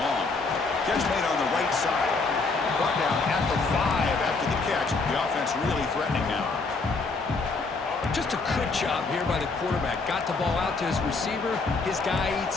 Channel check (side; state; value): right; quieter; 4.0 dB